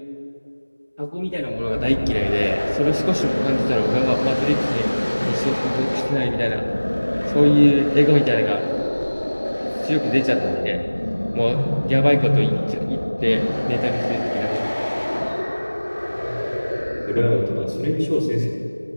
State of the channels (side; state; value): both; inverted; correlation -1.00